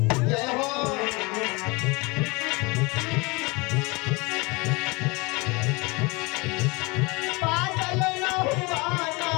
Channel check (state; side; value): quieter; right; 26.1 dB